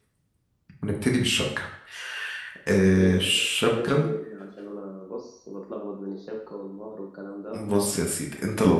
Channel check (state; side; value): identical; both; correlation 1.00